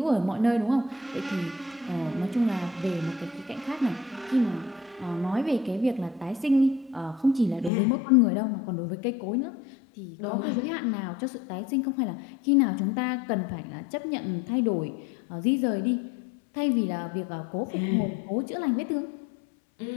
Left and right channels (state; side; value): drops out; right; at 7.7 s